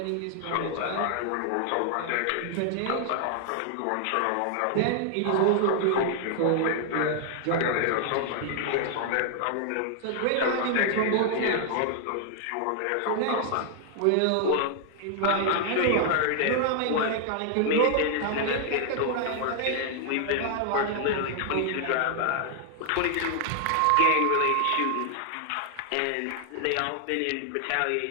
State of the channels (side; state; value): both; different; correlation 0.00